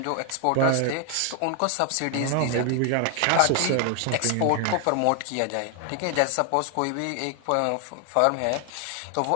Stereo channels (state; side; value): different; both; correlation 0.00